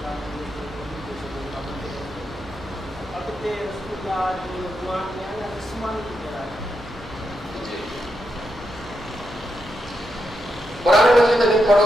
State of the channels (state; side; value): normal; both; correlation 0.84